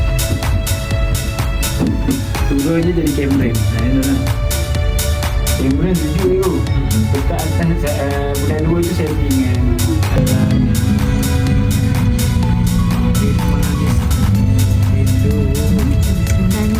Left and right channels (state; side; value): identical; both; correlation 1.00